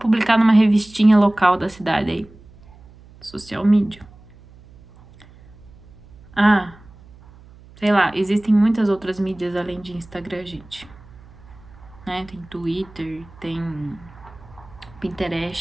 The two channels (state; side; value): noise; right; hum, 23 dB below the sound